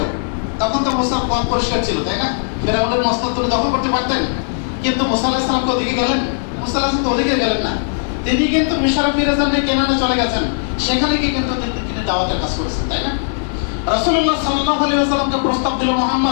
তখন তো মুসা পথ পরিষ্কার ছিল, তাই না? ফেরাউনের মস্তক তুলে দখল করতে পারতেন, কিন্তু মুসা আলাইহিস সালাম ওদিকে গেলেন? মুসা আলাইহিস সালাম তো ওদিকে গেলেন না। তিনি কিন্তু মিশরে ফিরে যান, কেনানে চলে গেছেন, সেখানে গিয়ে কিন্তু তিনি দাওয়াতের কাজ করেছেন, তাই না? রাসূলুল্লাহ সাল্লাল্লাহু আলাইহি ওয়াসাল্লামকে প্রস্তাব দিল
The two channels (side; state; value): right; silent; digital silence